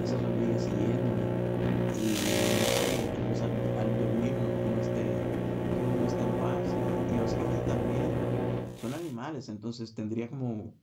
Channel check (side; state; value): both; identical; correlation 1.00